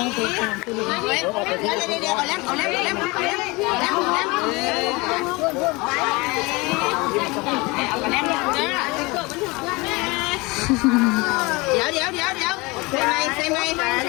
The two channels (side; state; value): right; quieter; 24.7 dB